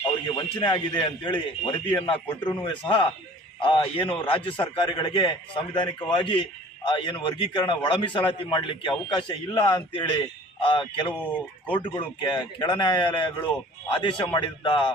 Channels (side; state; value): both; normal; correlation 0.48